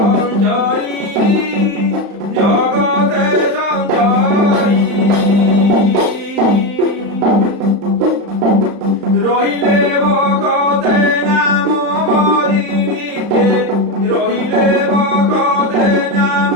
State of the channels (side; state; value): left; late; 35 ms